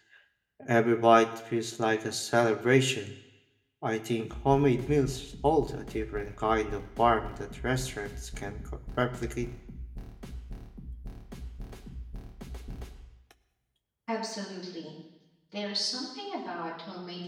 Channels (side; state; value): both; identical; correlation 1.00